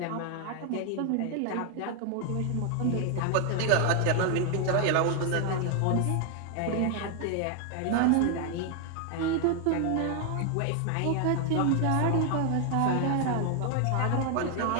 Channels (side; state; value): both; different; correlation 0.00